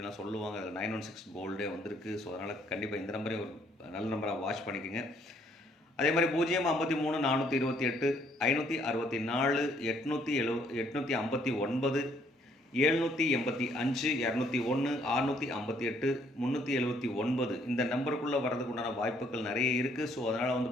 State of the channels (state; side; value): normal; both; correlation 0.66